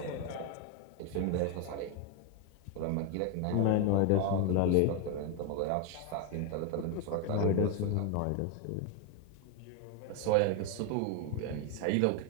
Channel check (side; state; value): both; different; correlation 0.01